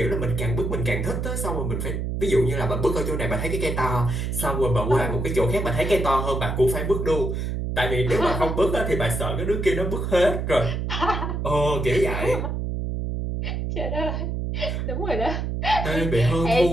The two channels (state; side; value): noise; right; hum, 2 dB below the sound